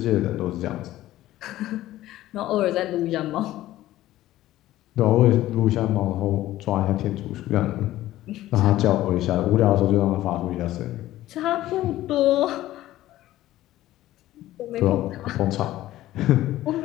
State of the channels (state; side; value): quieter; right; 14.9 dB